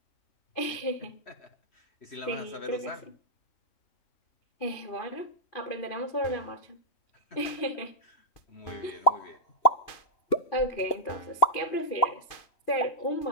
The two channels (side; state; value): right; late; 2.5 ms